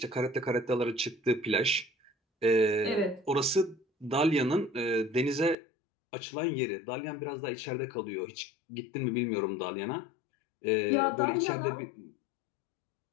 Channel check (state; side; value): drops out; right; at 5.6 s